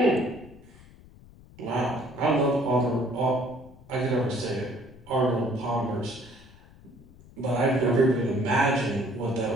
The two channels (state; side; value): noise; left; rumble, 22 dB below the sound